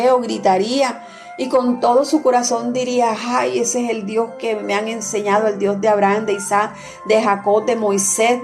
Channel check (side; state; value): both; identical; correlation 1.00